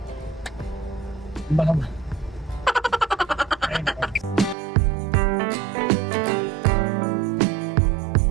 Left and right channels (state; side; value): drops out; left; at 4.5 s